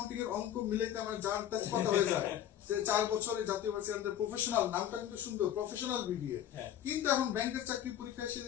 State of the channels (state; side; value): quieter; right; 10.9 dB